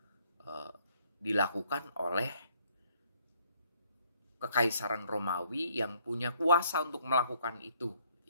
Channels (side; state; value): both; inverted; correlation -0.65